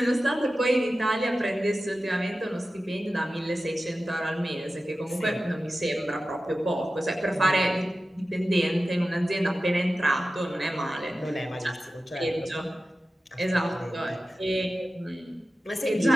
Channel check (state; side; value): normal; both; correlation 0.94